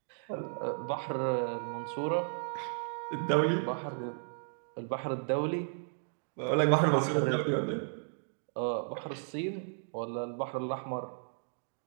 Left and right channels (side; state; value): left; silent; digital silence